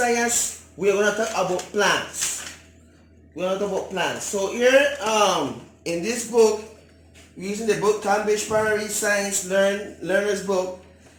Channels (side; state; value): both; identical; correlation 1.00